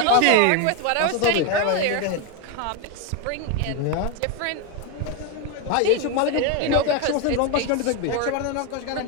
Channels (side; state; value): both; different; correlation 0.02